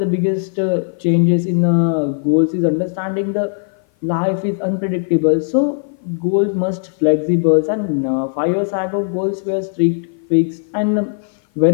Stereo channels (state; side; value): silent; right; 56 dB below the other